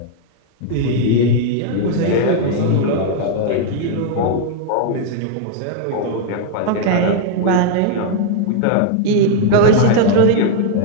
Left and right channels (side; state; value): both; different; correlation 0.00